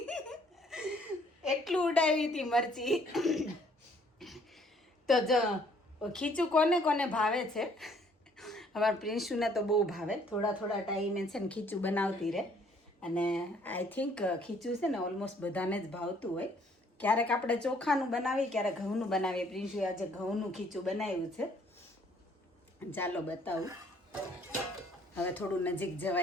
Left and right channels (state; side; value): normal; both; correlation 0.62